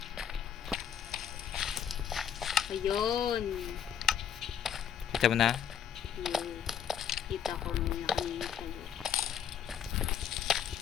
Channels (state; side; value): quieter; right; 8.7 dB